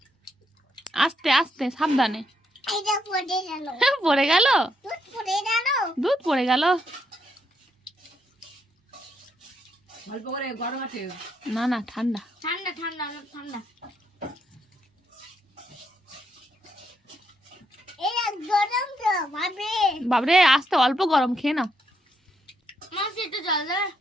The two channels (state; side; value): normal; both; correlation 0.77